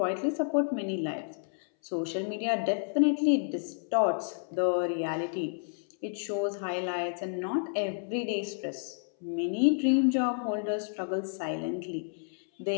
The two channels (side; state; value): right; silent; 57 dB below the other